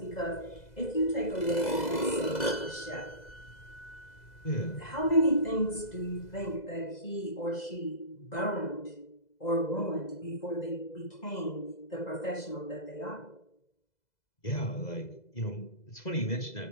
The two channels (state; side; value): late; right; 2.0 ms